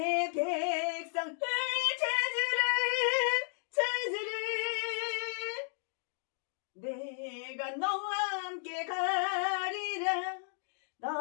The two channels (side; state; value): right; silent; digital silence